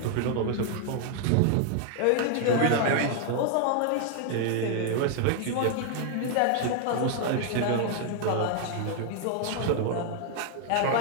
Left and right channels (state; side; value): different; both; correlation 0.00